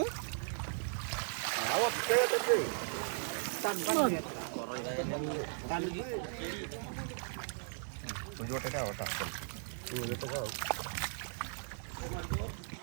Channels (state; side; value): silent; left; digital silence